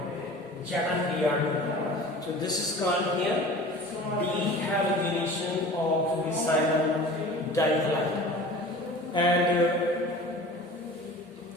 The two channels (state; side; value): normal; both; correlation 0.40